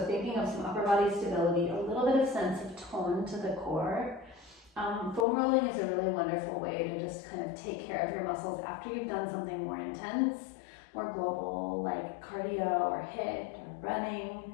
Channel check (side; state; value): right; drops out; at 5.2 s